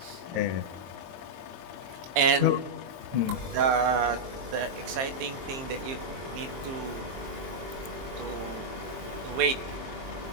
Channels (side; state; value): left; late; 23 ms